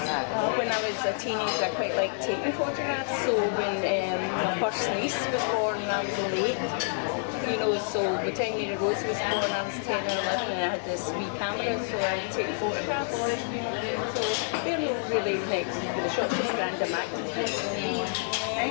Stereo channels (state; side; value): silent; right; 59 dB below the other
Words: When I was a teenager, I quite liked taking photographs. So when my first niece was born, I was 8. You know, so the time Lady Rose was born, I was 10 or 11, and I had this wee camera, so I would take photographs. You know, so they're not really next to the shop, just Granda Mac.